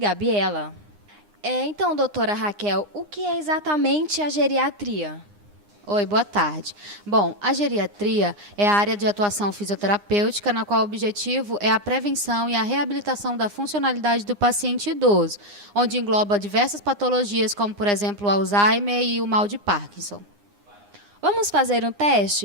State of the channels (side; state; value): left; late; 9.8 ms